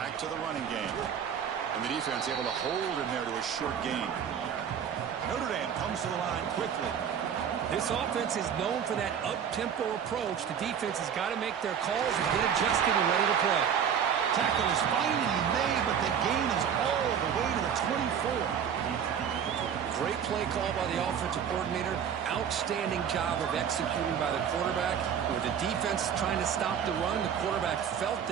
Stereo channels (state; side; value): quieter; left; 8.1 dB